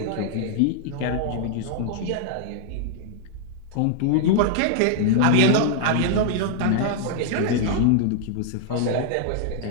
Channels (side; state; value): both; different; correlation 0.00